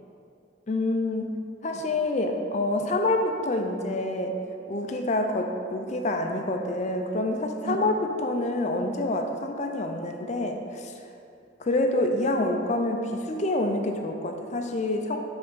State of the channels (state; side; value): normal; both; correlation 0.23